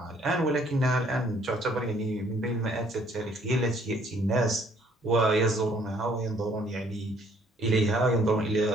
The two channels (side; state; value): both; normal; correlation 0.62